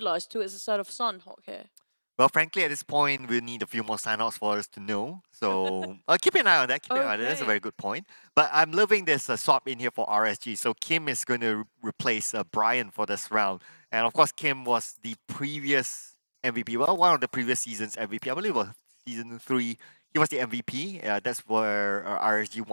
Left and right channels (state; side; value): inverted; both; correlation -1.00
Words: to the side of Sanhok here? Well, frankly, at this point, we'll need a few more sign-offs for us to know. So keep an eye on that. Keep an eye on that. That's a very good point. But I'm loving this swap in here for RSG. So Kim is going to replace Brian for this round. And of course, Kim was the previous MVP. Well, one of the previous season's MVP. I believe it was season 3. He was the MVP. That's where RSG